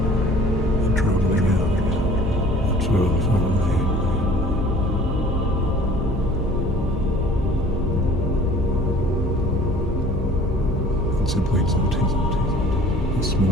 and traveling out much further from the head. And simply noting the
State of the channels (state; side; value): normal; both; correlation 0.49